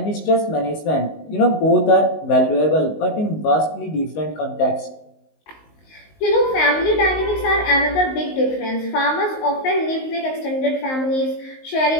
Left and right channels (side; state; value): right; late; 19 ms